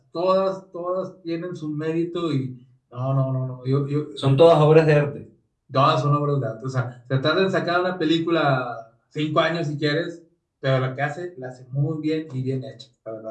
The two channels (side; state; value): both; identical; correlation 1.00